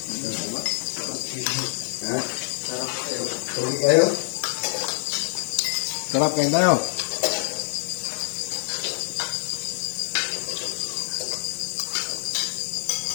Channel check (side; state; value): right; silent; digital silence